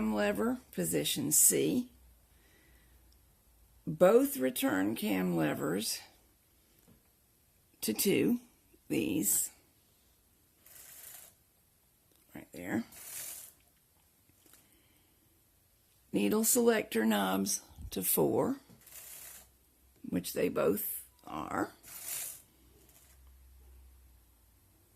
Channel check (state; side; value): identical; both; correlation 1.00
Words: lever, position C. Both return cam levers to 2, these, right there. Needle selector knobs to 4, which they both are.